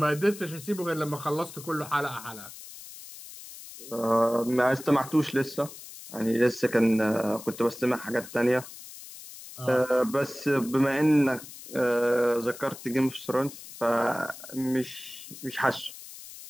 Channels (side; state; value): left; noise; hiss, 15 dB below the sound